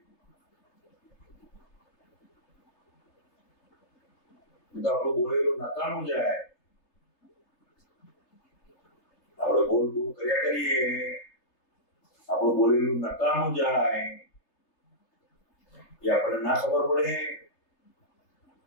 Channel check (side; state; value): right; late; 3.3 ms